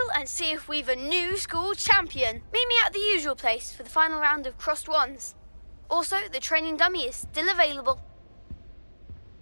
and see if we've a new school champion. Meet me at the usual place for the final round of crossed wands. Also, the training dummy is still available.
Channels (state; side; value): inverted; both; correlation -1.00